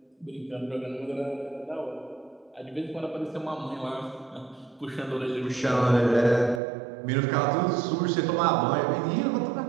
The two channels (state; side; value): drops out; left; at 6.6 s